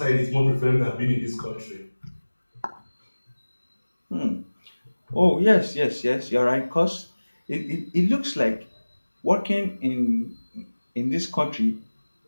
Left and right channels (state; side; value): inverted; both; correlation -1.00